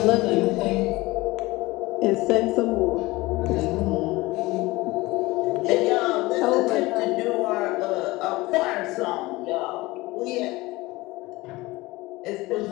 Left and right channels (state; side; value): quieter; right; 20.7 dB